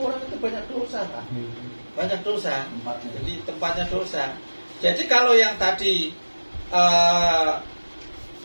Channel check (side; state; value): both; inverted; correlation -1.00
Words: itu banyak dosa, Pak. Banyak dosa. Jadi tempatnya dosa. Jadi kalau yang tadi